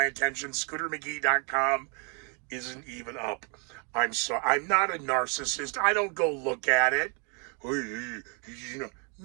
attention. ScooterMcGee.com isn't even up. I'm not a narcissist. I don't go look at it.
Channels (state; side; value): quieter; left; 36.6 dB